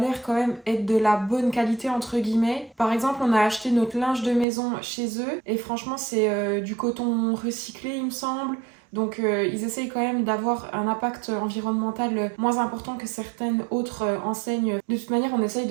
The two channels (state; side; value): drops out; left; at 4.5 s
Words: quand même être de la bonne qualité entre guillemets. Par exemple, on a acheté notre linge de maison chez eux et franchement, c'est du coton recyclé, il me semble. Donc ils essayent quand même d'avoir un impact environnemental moins important que certaines autres enseignes. De toute manière, on essaye